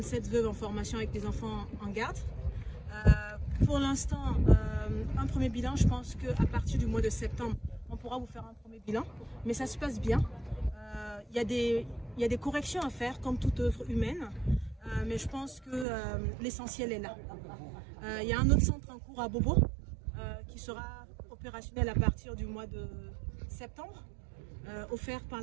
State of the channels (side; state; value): left; drops out; at 15.9 s